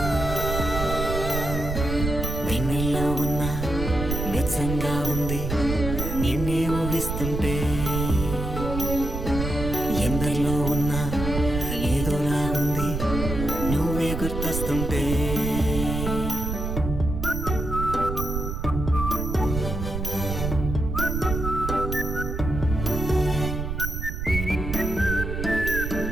చూస్తుంటే ఎందరిలో ఉన్నా ఏదోలాగుంది నువ్వే గుర్తొస్తుంటే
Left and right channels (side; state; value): right; noise; rumble, 4 dB below the sound